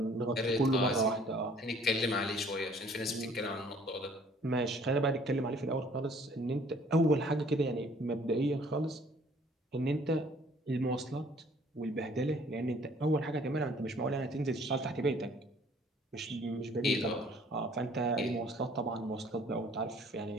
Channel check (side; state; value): both; normal; correlation 0.57